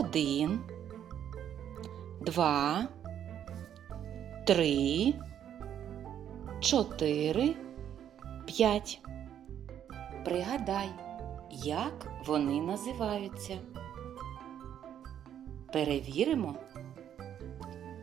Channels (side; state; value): left; quieter; 9.9 dB